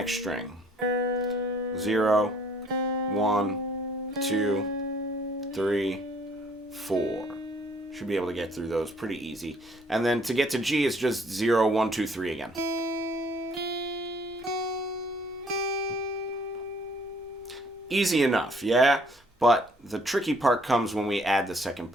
string. 0, 1, 2, 3, 4. Should be able to get through those pretty easy. And then to get to G, it's just 0, 1, 2, 3 again. Easy enough, yeah? But the tricky part comes when we add the second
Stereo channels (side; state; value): both; normal; correlation 0.61